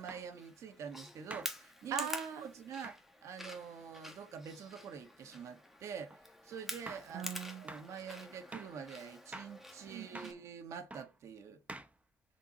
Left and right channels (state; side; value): quieter; left; 4.1 dB